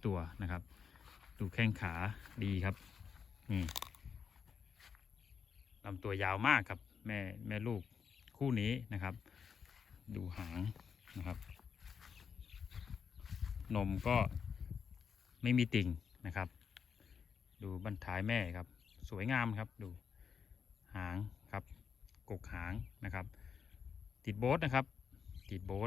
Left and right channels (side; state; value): right; quieter; 6.6 dB